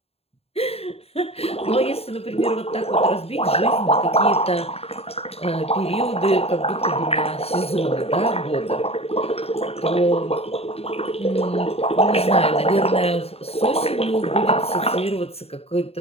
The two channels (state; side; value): late; right; 0.29 ms